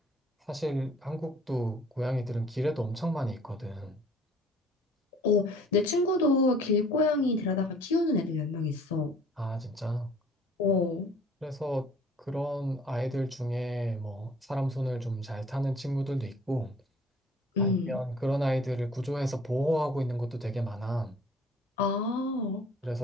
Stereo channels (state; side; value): normal; both; correlation 0.53